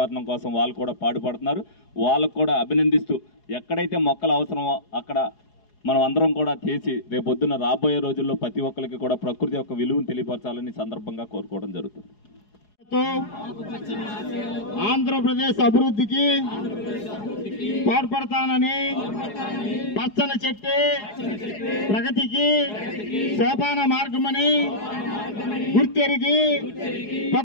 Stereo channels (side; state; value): right; late; 4.8 ms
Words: కోసం వాళ్ళు కూడా పాటుపడుతున్నారు. వాళ్ళకు కూడా అభినందిస్తూ ఎక్కడైతే మొక్కలు అవసరమో అక్కడ మనం అందరం కూడా చేసి రేపొద్దున రాబోయే రోజుల్లో ప్రతి ఒక్కరికి కూడా ప్రకృతి యొక్క విలువను తెలియపరచాలని సందర్భంగా కోరుకోవడం జరుగుతుంది. ఆంధ్రప్రదేశ్ అభివృద్ధికి తోడ్పడతానని పచ్చని చెట్టు ప్రగతికి సోపాన మార్గమని గుర్తెరిగి